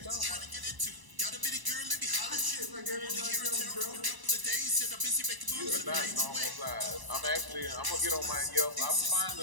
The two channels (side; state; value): left; late; 1.0 ms